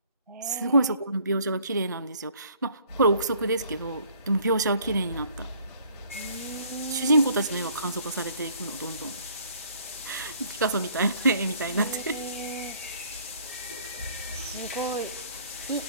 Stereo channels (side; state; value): both; inverted; correlation -0.59